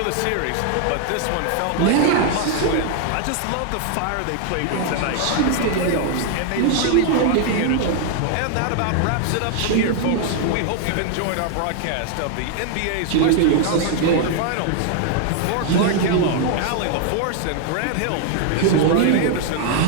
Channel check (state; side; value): different; both; correlation 0.00